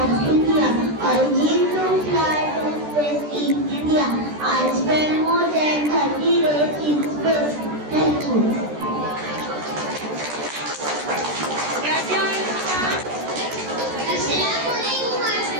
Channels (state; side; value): late; left; 14 ms